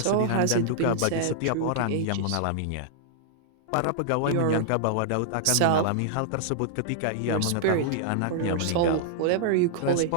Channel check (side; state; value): both; different; correlation -0.01